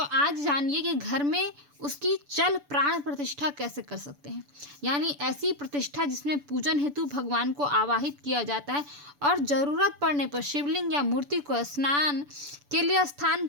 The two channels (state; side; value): late; left; 6.9 ms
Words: जानिए कि घर में उसकी चल प्राण प्रतिष्ठा कैसे कर सकते हैं। यानी ऐसी प्रतिष्ठा जिसमें पूजन हेतु भगवान को आवाहित किया जाता है और ज़रूरत पड़ने पर शिवलिंग या मूर्ति को स्नान के लिए स्थान